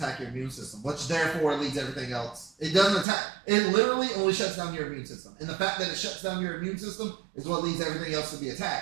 your immune system, which therefore leads everything else. It doesn't attack. It literally only shuts down your immune system, and the fact that it shuts down your immune system is what leads everything else to be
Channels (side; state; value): left; drops out; at 3.1 s